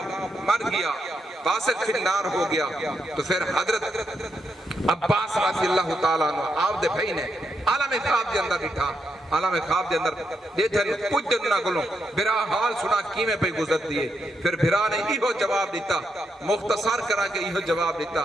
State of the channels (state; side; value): normal; both; correlation 0.82